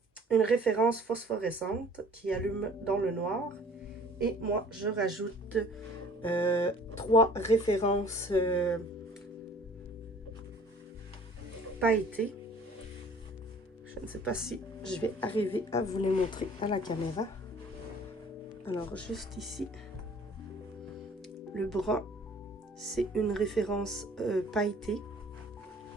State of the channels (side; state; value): both; normal; correlation 0.51